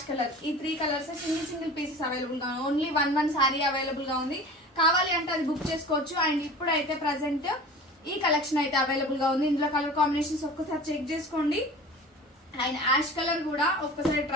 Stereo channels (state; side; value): normal; both; correlation 0.38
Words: colour, ఈ 3 కలర్స్ సింగిల్ పీసెస్ అవైలబుల్ గా ఉన్నాయి. ఓన్లీ వన్ సారీ అవైలబుల్ గా ఉంది. కావాలి అంటే అది బుక్ చేసుకోవచ్చు. అండ్ ఇప్పుడైతే ప్రజెంట్ ఈ కలెక్షన్ అయితే అవైలబుల్ గా ఉంది. ఇందులో కలర్ కాంబినేషన్స్ ఒక్కసారి చెక్ చేసుకోండి. అండ్ యాష్ కలర్ కూడా ఒక్కసారి